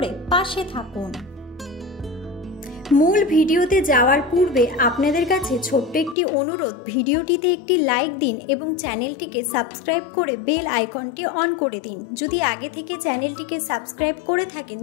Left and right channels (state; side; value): drops out; right; at 6.2 s